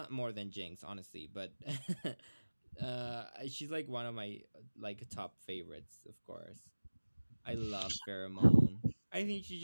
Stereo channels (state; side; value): inverted; both; correlation -1.00